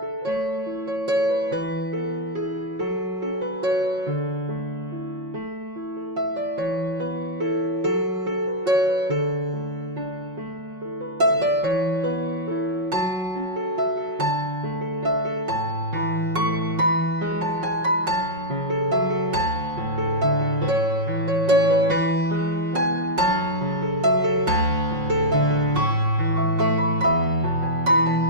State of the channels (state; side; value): late; left; 5.5 ms